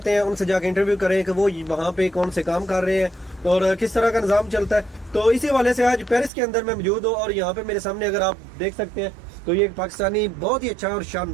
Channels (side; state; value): left; drops out; at 6.3 s